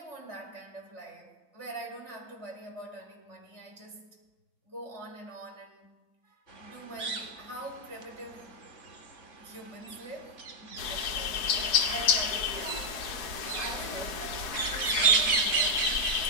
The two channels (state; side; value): late; right; 4.6 ms